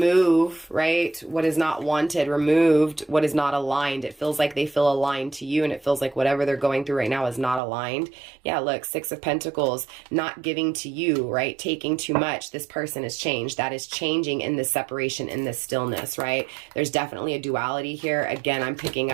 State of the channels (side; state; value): left; drops out; at 7.6 s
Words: right, what is not wanted, removed what is not aligned. It feels like they feel aligned to you, and it feels like whatever they're going through right now is not aligned. Yeah, look, 6 of Pentacles, not giving to you, right, taking too much. This person is changed. That is changing in this separation, in this stillness, right? There's definitely a duality here. Again, I'm picking